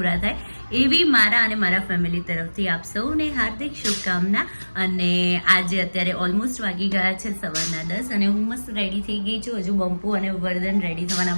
થાય એવી મારા અને મારા ફેમિલી તરફથી આપ સૌને હાર્દિક શુભકામના. અને આજે અત્યારે ઓલમોસ્ટ વાગી ગયા છે સવારના 10 અને હું મસ્ત રેડી થઈ ગઈ છું. હજુ બંપુ અને વર્ધન રેડી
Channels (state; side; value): inverted; both; correlation -1.00